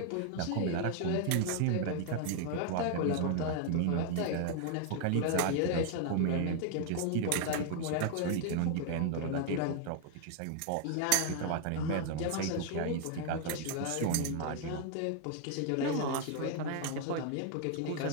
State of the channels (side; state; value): both; different; correlation 0.00